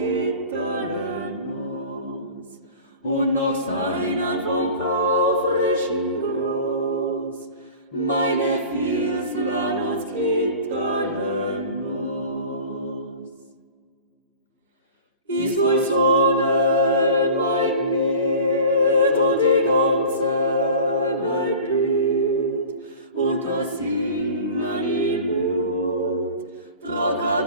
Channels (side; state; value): both; inverted; correlation -0.40